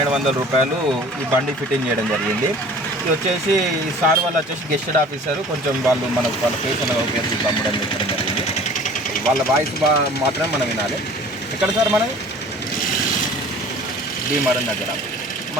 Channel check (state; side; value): normal; both; correlation 0.46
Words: రూపాయలు ఈ బండి ఫిట్టింగ్ చేయడం జరిగింది. ఇది వచ్చేసి ఈ సార్ వాళ్ళు వచ్చేసి గెస్టెడ్ ఆఫీసర్, కొంచెం వాళ్ళ ఫేస్ అనేది ఉపయోగించి అమ్మడం చెప్పడం జరిగింది. వాళ్ళ వాయిస్ మాత్రమే మనం వినాలి. ఎక్కడ సార్ మనది భీమవరం దగ్గర.